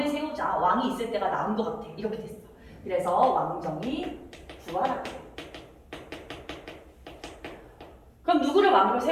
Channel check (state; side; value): identical; both; correlation 1.00